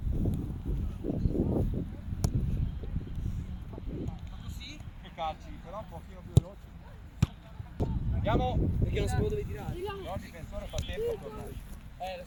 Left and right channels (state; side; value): identical; both; correlation 1.00